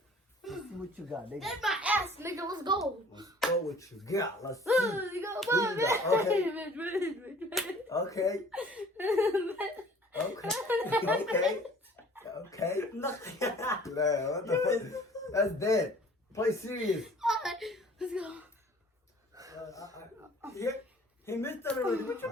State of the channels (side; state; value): both; normal; correlation 0.51